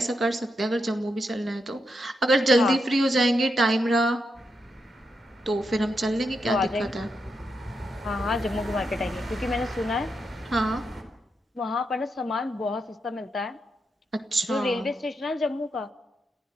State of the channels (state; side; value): normal; both; correlation 0.84